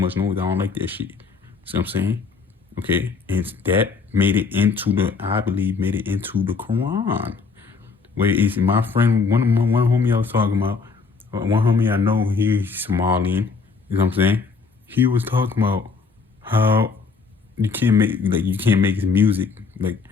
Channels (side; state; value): right; quieter; 4.8 dB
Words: noise. I don't like that shit. See what I'm saying? Okay, and that made it into I believe made it into the Quran. Where is my friend, one homie I was talking about, one homie I know, he's Somalian, you know what I'm saying? He was talking about how you can't make music, like